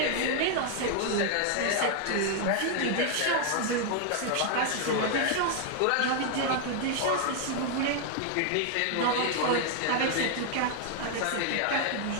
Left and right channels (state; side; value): different; both; correlation 0.00